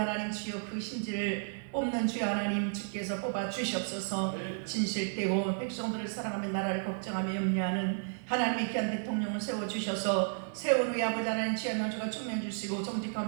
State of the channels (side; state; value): left; silent; digital silence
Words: 주여 그 심지를 뽑는 주여 하나님 주께서 뽑아 주시옵소서. 진실되고 백성들을 사랑하며 나라를 걱정하며 염려하는 하나님의 귀한 대통령을 세워주셔서 세운 후에 아버지 하나님 지혜와 명철과 총명 주시고